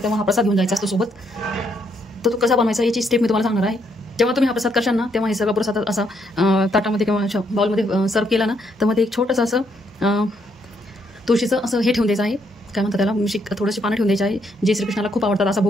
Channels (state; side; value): normal; both; correlation 0.73